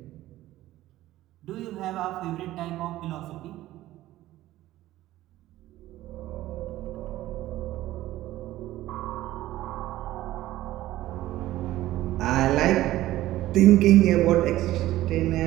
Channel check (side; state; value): left; quieter; 15.4 dB